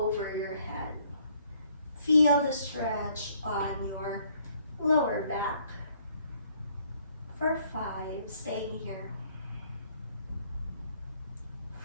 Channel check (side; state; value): both; inverted; correlation -0.65